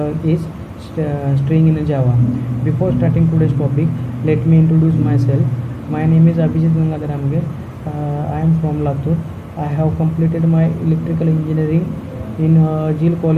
is string in Java. Before starting today's topic, let me introduce myself. My name is Abhijit Gangadhar Amge. I am from Latur. I have completed my electrical engineering in Jil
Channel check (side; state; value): both; identical; correlation 1.00